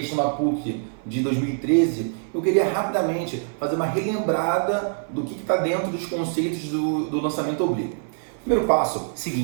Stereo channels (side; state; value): left; silent; 56 dB below the other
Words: da PUC de 2013, eu queria rapidamente fazer uma relembrada do que está dentro dos conceitos do lançamento oblíquo. Primeiro passo,